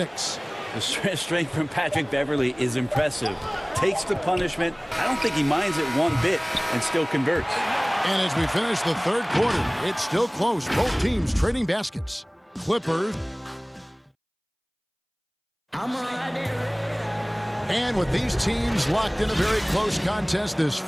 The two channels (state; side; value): identical; both; correlation 1.00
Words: The strength from Patrick Beverly is impressive. Takes the punishment. I don't think he minds it one bit and still converts. And as we finish the third quarter, it's still close. Both teams trading baskets. Clippers. And with these teams locked in a very close contest, this